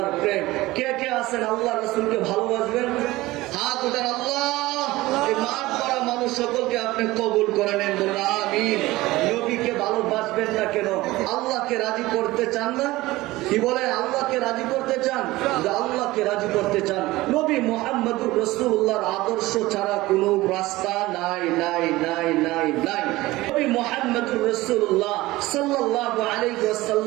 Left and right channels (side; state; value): left; quieter; 18.8 dB